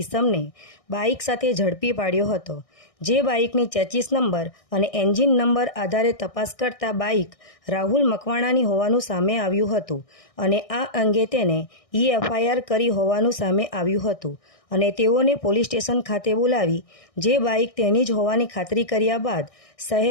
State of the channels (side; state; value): right; late; 1.6 ms